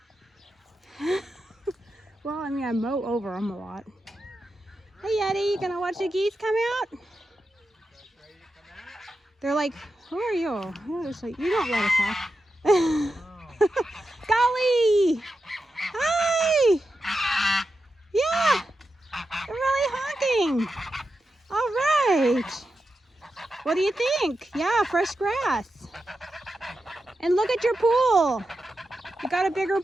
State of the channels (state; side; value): normal; both; correlation 0.89